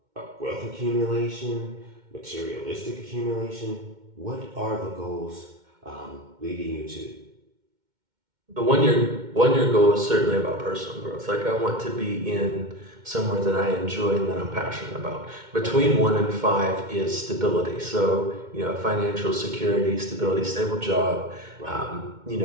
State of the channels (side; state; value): left; late; 2.1 ms